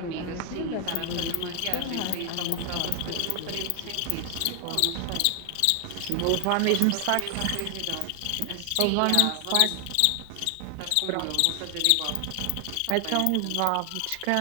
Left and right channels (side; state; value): both; different; correlation 0.00